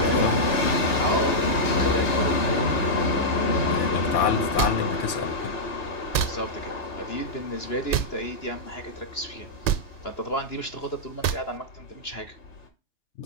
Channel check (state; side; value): late; right; 2.4 ms